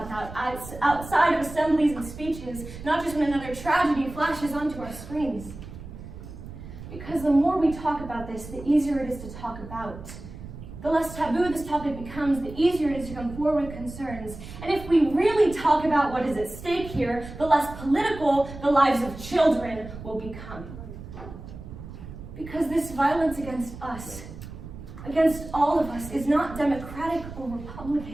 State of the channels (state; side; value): noise; right; rumble, 13 dB below the sound